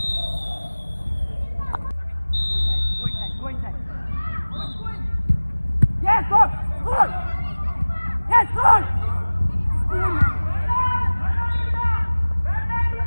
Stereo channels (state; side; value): inverted; both; correlation -1.00